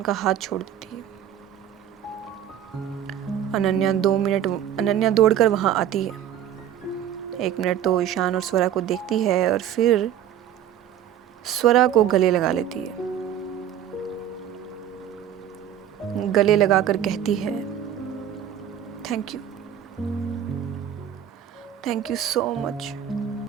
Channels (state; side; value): quieter; left; 10.2 dB